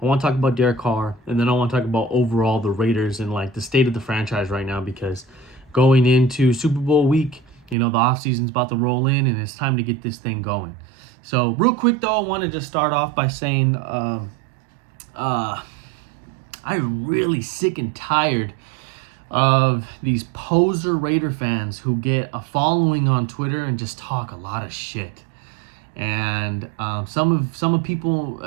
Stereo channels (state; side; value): drops out; left; at 7.8 s